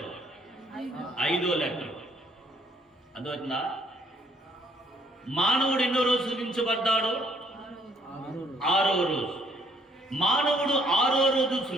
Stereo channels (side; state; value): both; normal; correlation 0.65